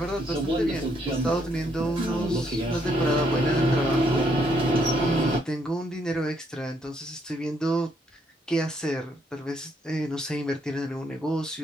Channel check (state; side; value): normal; both; correlation 0.73